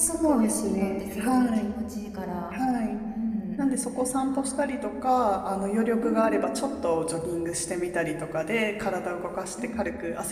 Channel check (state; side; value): identical; both; correlation 1.00